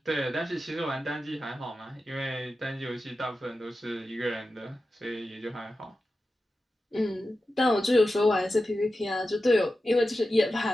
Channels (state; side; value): normal; both; correlation 0.92